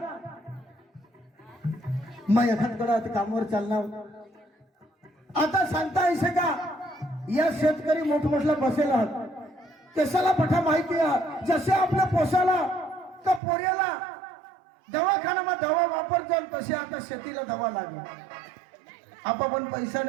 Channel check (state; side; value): drops out; left; at 13.4 s